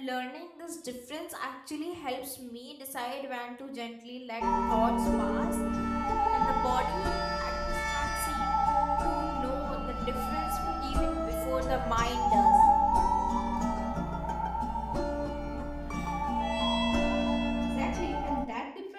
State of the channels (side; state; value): both; identical; correlation 1.00